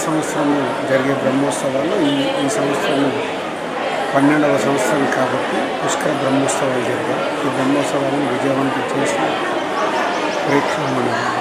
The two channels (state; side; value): identical; both; correlation 1.00